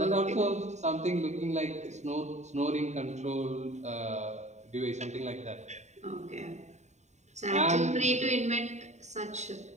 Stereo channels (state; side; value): late; left; 0.34 ms